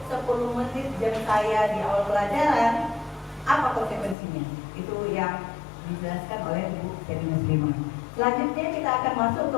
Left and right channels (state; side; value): drops out; right; at 4.2 s